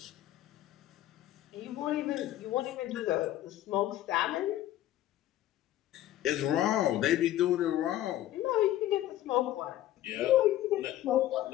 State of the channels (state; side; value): quieter; right; 13.6 dB